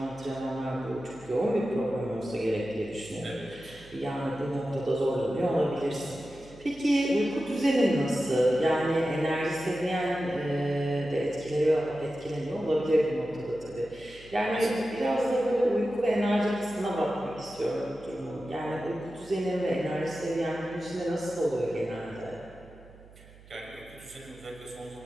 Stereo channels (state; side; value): noise; right; hum, 22 dB below the sound